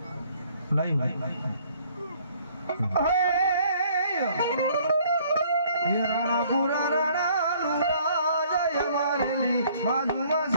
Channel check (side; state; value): both; inverted; correlation -0.60